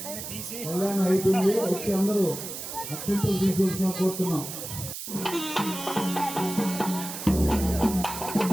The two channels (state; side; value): noise; right; hiss, 8 dB below the sound